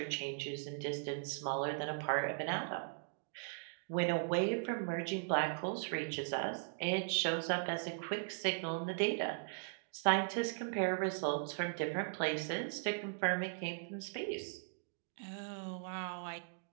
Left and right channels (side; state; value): left; silent; digital silence